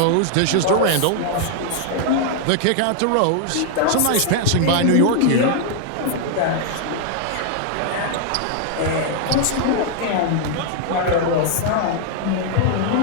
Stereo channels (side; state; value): both; different; correlation 0.00